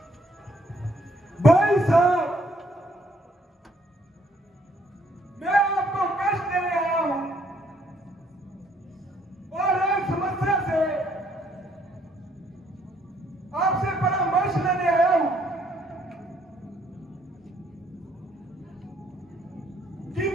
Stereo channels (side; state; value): both; normal; correlation 0.67